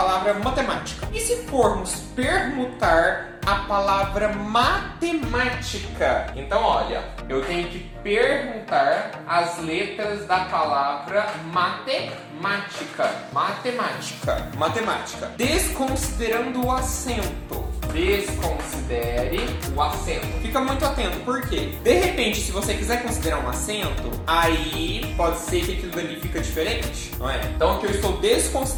matemática. E se formos permutar a palavra matemática? Então, olha, eu tenho que permutar as letras da palavra matemática. Desconsiderando o acento. Desconsidere o acento. Fica muito atento, por quê? De repente, se você quiser considerar um acento, aí pode ser que aquilo dali fica diferente, não é? Então aqui eu estou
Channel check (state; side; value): identical; both; correlation 1.00